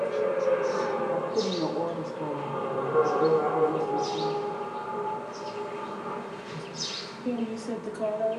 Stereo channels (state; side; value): identical; both; correlation 1.00